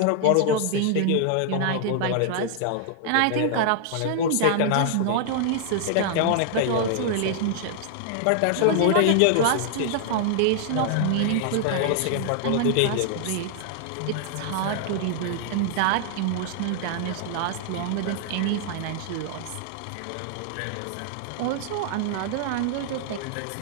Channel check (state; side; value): different; both; correlation -0.01